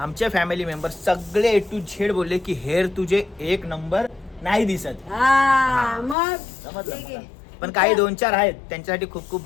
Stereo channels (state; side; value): drops out; right; at 6.2 s